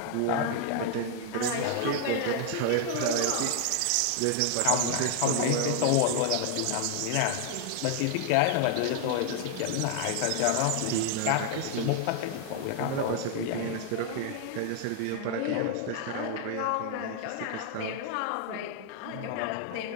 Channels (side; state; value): both; different; correlation 0.00